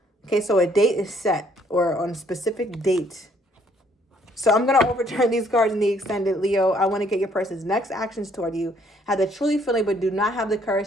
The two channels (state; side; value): normal; both; correlation 0.65